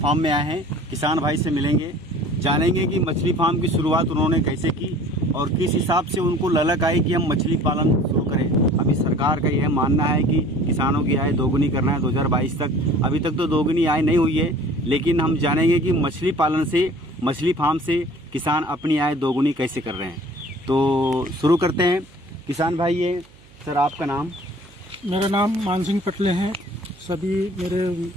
में आए हैं। किसान भाई से मिलेंगे, जानेंगे कि मछली फार्म की शुरुआत उन्होंने कैसे की और किस हिसाब से उनको ललक आई कि हम मछली पालन शुरू करें। अभी सरकार का यह मानना है कि किसानों की आय दोगुनी करना है 2022 तक। अभी तक तो दोगुनी आय नहीं हुई है, लेकिन हम जानेंगे कि मछली पालन से, मछली फार्म से किसान अपनी आय दोगुनी कैसे कर रहे हैं। तो शुरू करते हैं। किसान भाई, ये सर आपका नाम? मेरा नाम मान सिंह पटले हैं। सभी मेरे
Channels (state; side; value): noise; right; hum, 27 dB below the sound